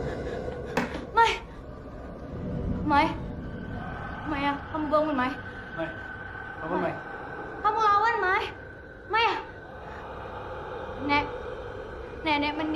Mai, Maya, kamu bangun, Mai. Mai, bangun Mai. Kamu lawan, Mai. Maya. Nenek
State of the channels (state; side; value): identical; both; correlation 1.00